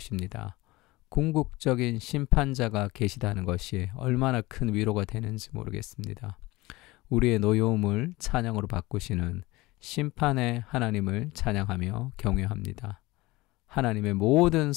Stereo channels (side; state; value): right; quieter; 20.6 dB